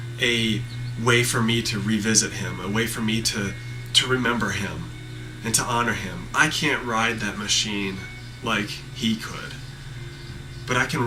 a way for me to revisit him, a way for me to remember him and to honor him. I can't ride that machine like he could, but I can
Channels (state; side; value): identical; both; correlation 1.00